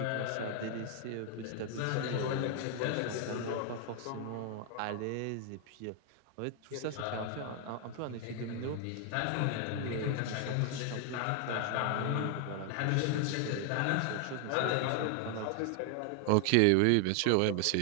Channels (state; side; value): different; both; correlation 0.00